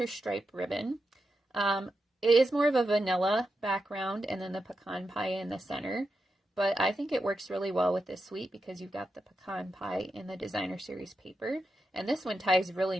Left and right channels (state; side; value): normal; both; correlation 0.87